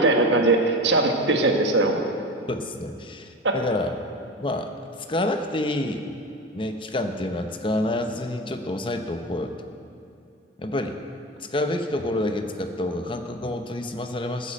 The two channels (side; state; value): both; normal; correlation 0.28